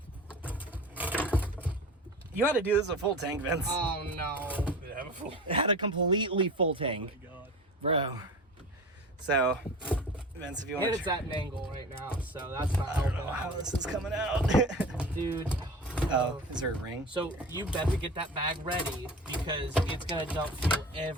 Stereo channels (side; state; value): both; normal; correlation 0.35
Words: You had to do this a full tank, Vince. Oh no. Did it have a full? It had a completely full tank, God. bro. So, Vince, if you want And to, it's at an angle right now, so that's not I don't know helping. how this is coming out. Dude. Oh, is there a ring? So you better get that bag ready because it's gonna dump fuel